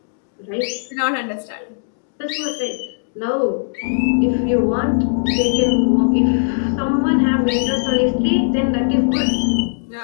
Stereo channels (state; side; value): silent; right; digital silence